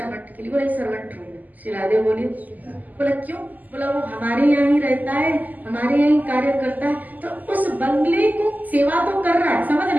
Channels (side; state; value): left; late; 0.081 ms